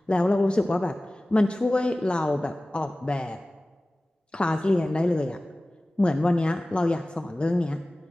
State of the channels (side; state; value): both; normal; correlation 0.97